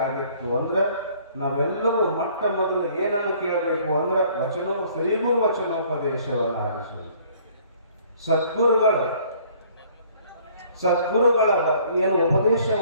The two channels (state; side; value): inverted; both; correlation -0.58